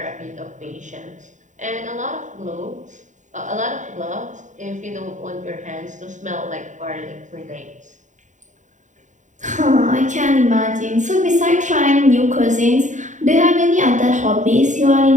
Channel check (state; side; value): late; left; 0.36 ms